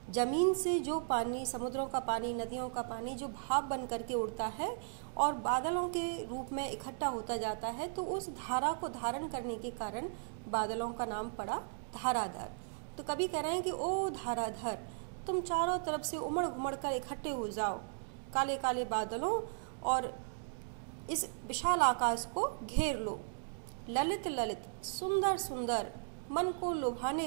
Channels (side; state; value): left; silent; digital silence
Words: जमीन से जो पानी, समुद्रों का पानी, नदियों का पानी जो भाप बन करके उड़ता है और बादलों के रूप में इकट्ठा होता जाता है, तो उस धारा को धारण करने के कारण बादलों का नाम पड़ा धाराधर। तो कवि कह रहे हैं कि ओ धाराधर, तुम चारों तरफ से उमड़ घुमड़ कर इकट्ठे हो जाओ काले काले बादलों और इस विशाल आकाश को घेर लो। ललित ललित, सुंदर सुंदर, मन को लुभाने